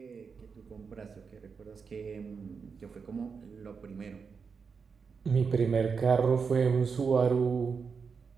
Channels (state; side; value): quieter; left; 5.6 dB